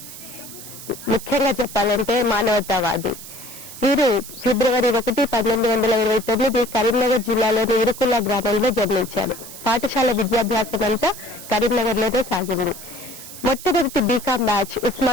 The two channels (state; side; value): noise; right; hiss, 14 dB below the sound